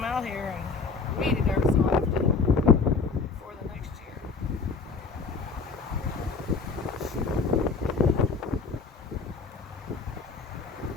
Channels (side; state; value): right; quieter; 4.5 dB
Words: out here and weed it every so often for the next year.